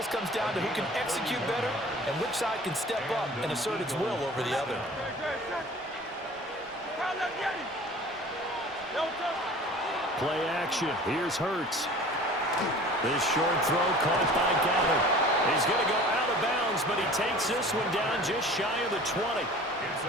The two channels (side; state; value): both; normal; correlation 0.44